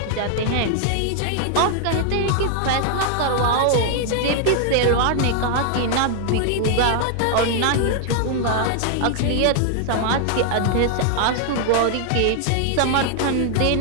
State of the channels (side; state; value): both; different; correlation 0.00